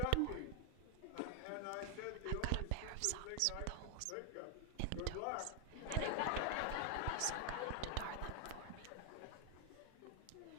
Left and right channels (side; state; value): both; different; correlation 0.00